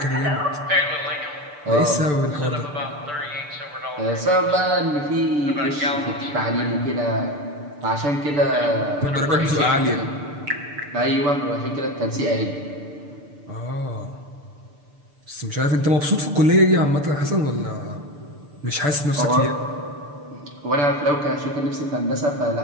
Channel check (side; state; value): left; late; 6.8 ms